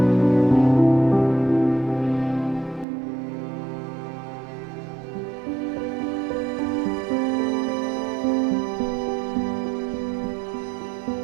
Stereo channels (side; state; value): left; drops out; at 2.9 s